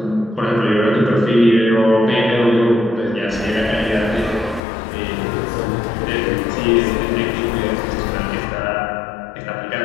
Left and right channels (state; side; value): drops out; right; at 4.6 s